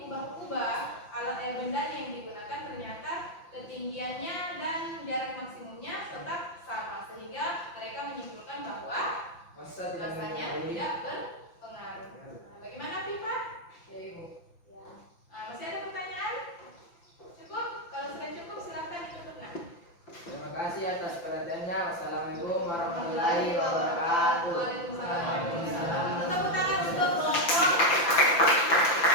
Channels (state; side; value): late; right; 5.8 ms